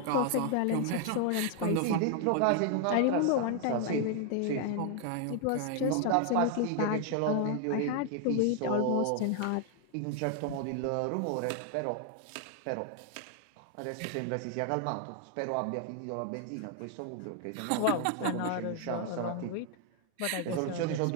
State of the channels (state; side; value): different; both; correlation 0.00